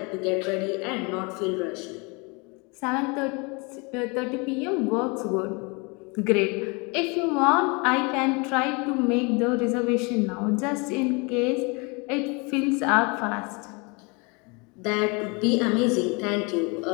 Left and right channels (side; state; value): right; quieter; 29.9 dB